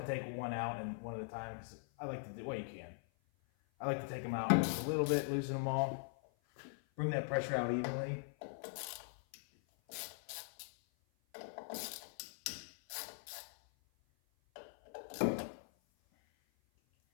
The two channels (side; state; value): right; silent; 51 dB below the other